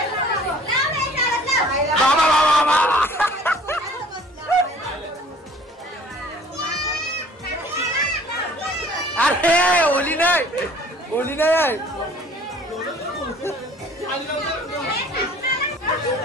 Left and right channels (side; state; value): both; normal; correlation 0.51